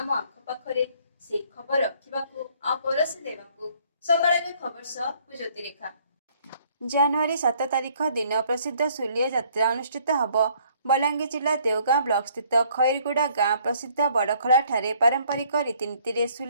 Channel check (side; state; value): both; inverted; correlation -0.62